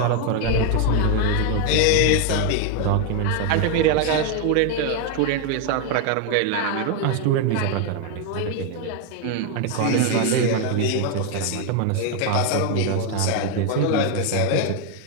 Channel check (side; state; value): both; different; correlation 0.01